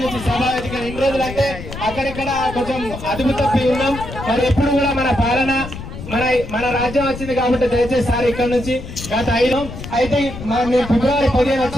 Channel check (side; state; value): left; noise; rumble, 11 dB below the sound